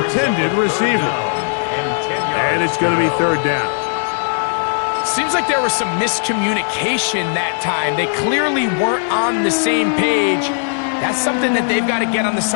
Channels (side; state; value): right; silent; 68 dB below the other